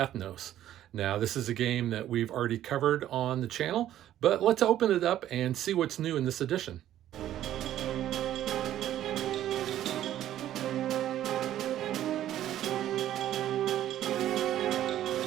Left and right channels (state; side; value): quieter; left; 12.3 dB